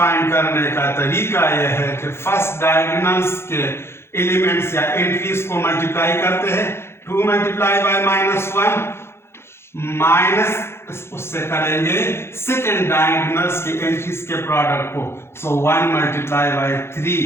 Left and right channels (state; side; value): late; right; 0.12 ms